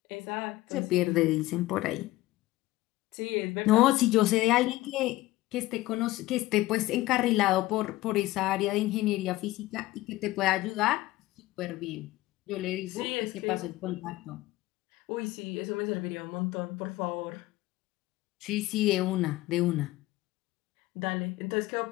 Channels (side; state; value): right; quieter; 17.7 dB